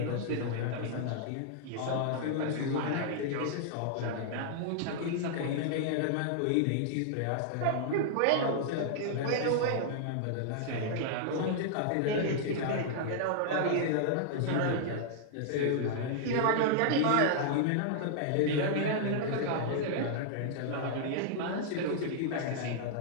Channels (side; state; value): both; different; correlation -0.01